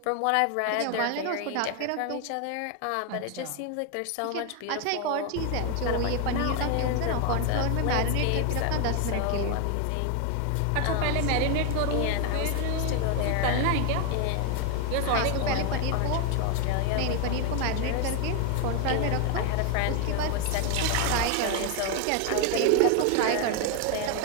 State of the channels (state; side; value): different; both; correlation 0.01